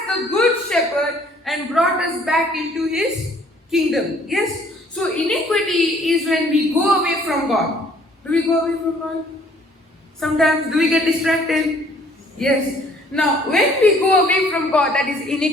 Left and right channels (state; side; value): normal; both; correlation 0.59